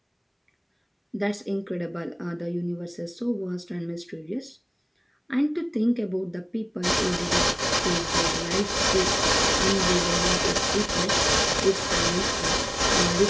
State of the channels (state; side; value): identical; both; correlation 1.00